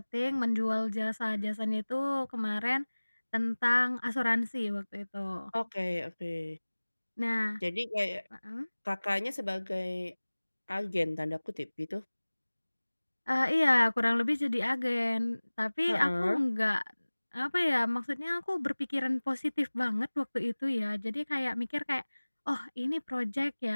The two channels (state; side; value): inverted; both; correlation -1.00